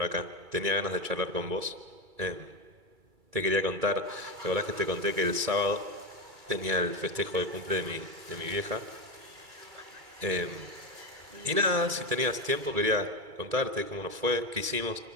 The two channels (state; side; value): late; left; 2.3 ms